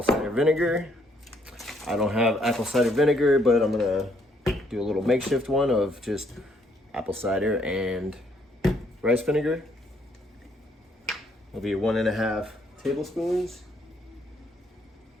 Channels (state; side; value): normal; both; correlation 0.69